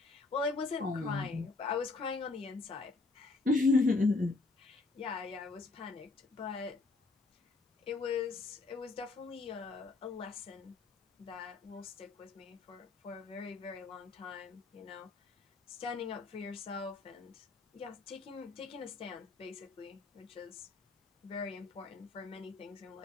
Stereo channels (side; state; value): right; quieter; 3.6 dB